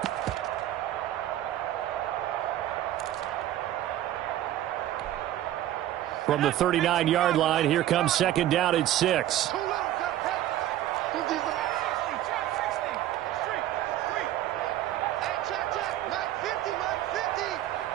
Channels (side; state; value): left; quieter; 13.2 dB